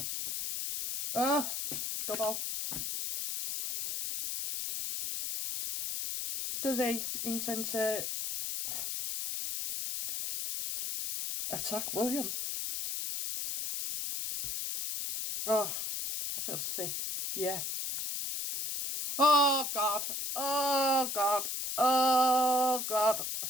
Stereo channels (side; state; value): left; noise; hiss, 3 dB below the sound